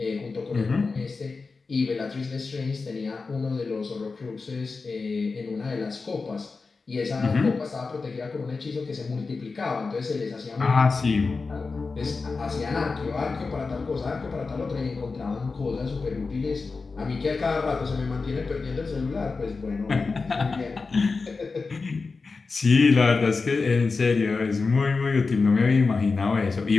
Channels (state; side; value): quieter; right; 4.3 dB